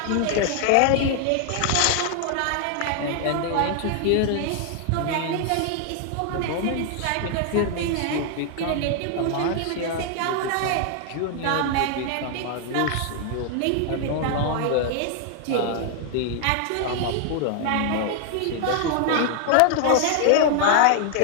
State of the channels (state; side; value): different; both; correlation 0.00